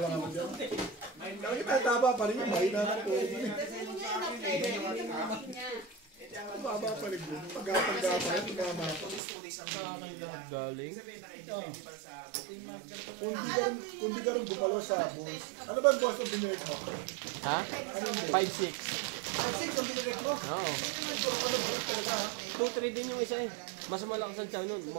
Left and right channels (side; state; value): left; drops out; at 9.2 s